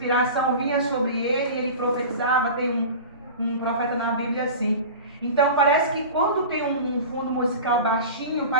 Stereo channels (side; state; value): both; inverted; correlation -0.34